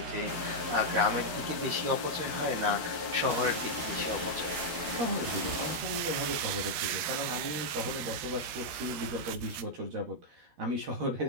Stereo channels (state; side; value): late; left; 13 ms